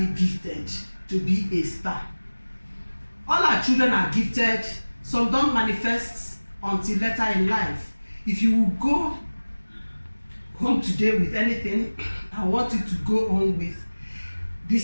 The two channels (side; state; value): both; inverted; correlation -1.00